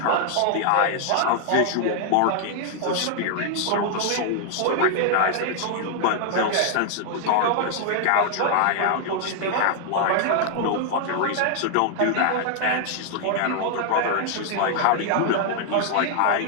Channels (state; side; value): different; both; correlation -0.01